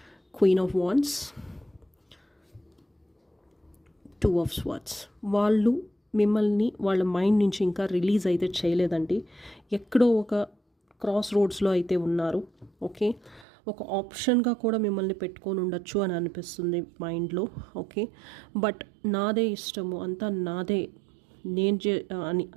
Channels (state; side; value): drops out; left; at 13.5 s